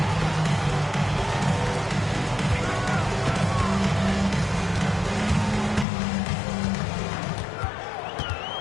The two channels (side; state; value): right; drops out; at 5.9 s